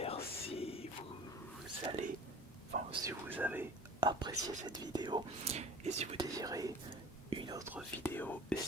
si vous allez, si vous avez apprécié cette vidéo et si vous désirez une autre vidéo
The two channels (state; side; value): normal; both; correlation 0.43